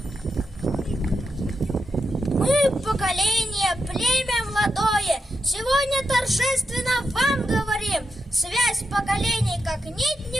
Мы поколение, племя молодое, сегодня торжественно вам говорим. Связь поколений как нить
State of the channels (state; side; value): normal; both; correlation 0.87